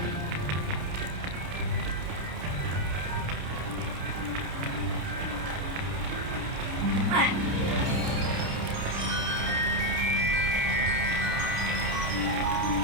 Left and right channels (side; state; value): left; late; 30 ms